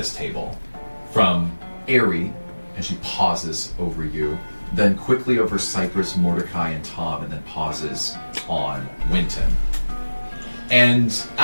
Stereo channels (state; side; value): inverted; both; correlation -1.00